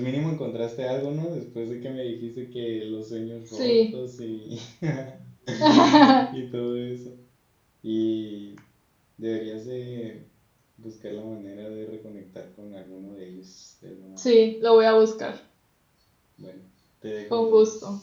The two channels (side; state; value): both; identical; correlation 1.00